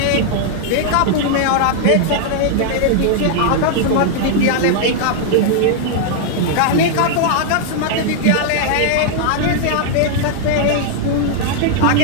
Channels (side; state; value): both; different; correlation -0.01